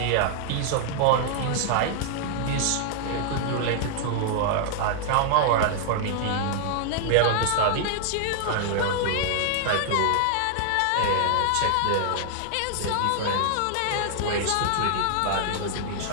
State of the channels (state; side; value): different; both; correlation 0.00